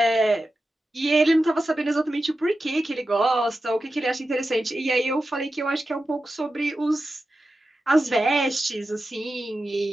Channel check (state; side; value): normal; both; correlation 0.92